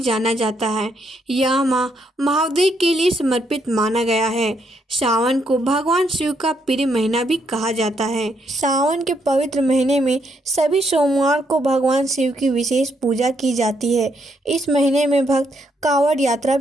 जाता है, यह माह महादेव के लिए समर्पित माना गया है। सावन को भगवान शिव का प्रिय महीना भी कहा जाता है। सावन के पवित्र महीने में सभी सोमवार को भगवान शिव की विशेष पूजा की जाती है। इस महीने में भक्त कांवड़ यात्रा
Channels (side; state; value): both; normal; correlation 0.75